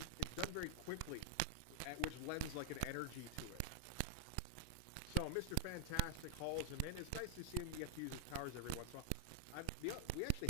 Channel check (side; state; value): both; different; correlation 0.00